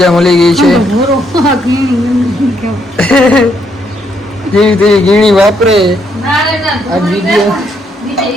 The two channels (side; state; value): both; normal; correlation 0.74